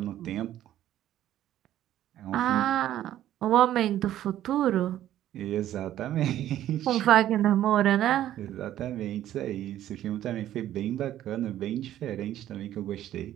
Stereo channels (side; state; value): left; quieter; 12.5 dB